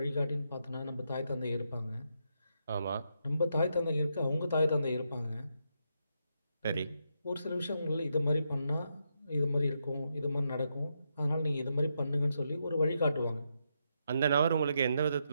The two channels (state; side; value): inverted; both; correlation -0.81